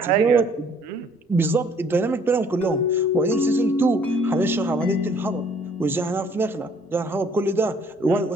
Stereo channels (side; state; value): both; normal; correlation 0.60